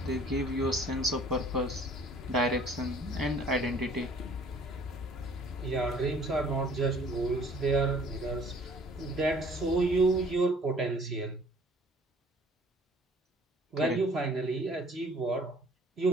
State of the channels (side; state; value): both; normal; correlation 0.54